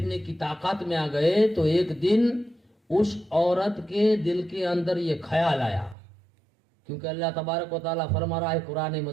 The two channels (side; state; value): left; drops out; at 6.0 s